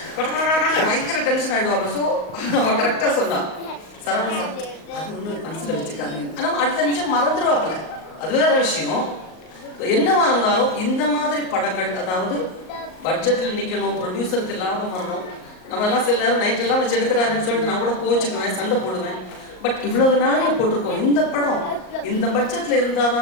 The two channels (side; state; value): right; late; 38 ms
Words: பயங்கர டென்ஷன் ஆகிடுவாங்க. ஸோ அவன் கரெக்டாக சொன்னான் சரவண சார் அது ஒன்று மனசில் வச்சுக்காதீங்க. ஆனால் அடுத்த நிமிஷம் மறந்துடுவாப்பில்ல, அது வேற விஷயம். என்னவா இருந்தாலும் இந்த மாதிரி படங்கள், அதாவது பட்ஜெட்டில் நிற்கணும், ப்ரொடியூசருக்கு லாபம் வரணும். நம்ம எல்லாம் சில நேரம் நைட்டெல்லாம் வச்சு எடுக்கிறாருன்னு சொல்லிட்டு நான் கூட கோச்சுக்குவேன், சண்டை போடுவேன். பட் இவ்வளவு நாளில் போட்டிருக்கோம் இந்த படம் இந்த பட்ஜெட்டில் இருந்தால்